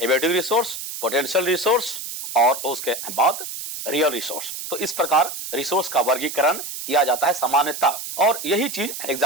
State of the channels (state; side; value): noise; right; hiss, 8 dB below the sound